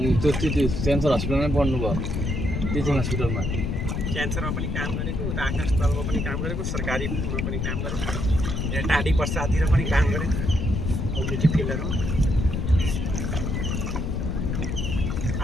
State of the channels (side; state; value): left; noise; rumble, 1 dB below the sound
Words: त्यो क्यान्सर हस्पिटलमै पढ्नु भयो टिचिङ हस्पिटलमा क्यान्सरमा पनि काम गरेको उता आकाशतलमा पनि काम गरेको सरकारीमा पनि काम गरेको यहाँ टाढी पर्सातिर पनि काम गरेको कम्युनिटी फिल्डहरूमा